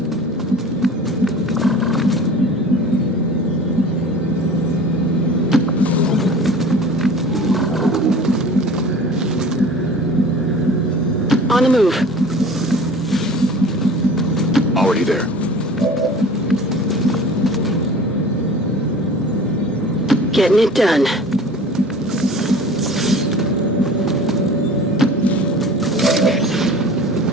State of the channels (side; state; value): both; normal; correlation 0.42